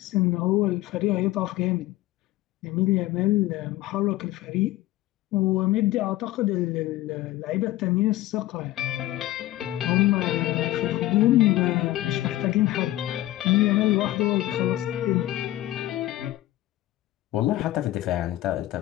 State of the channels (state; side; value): quieter; right; 15.7 dB